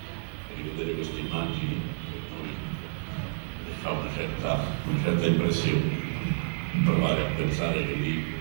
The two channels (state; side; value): silent; left; digital silence